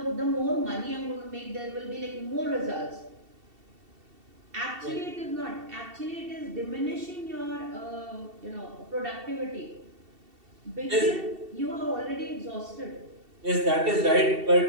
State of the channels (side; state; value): left; late; 2.7 ms